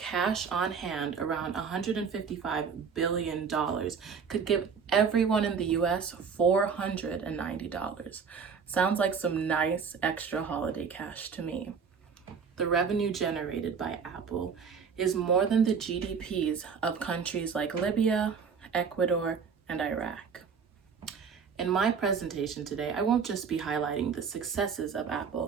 on hand, around $155 billion, could give everyone in the US $490. Sounds like some nice extra holiday cash to me. The revenue generated by Apple is more than the GDPs of countries like Libya, Ecuador, and Iraq. In my presentation today, I won't just be highlighting the successes of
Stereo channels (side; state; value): left; quieter; 6.1 dB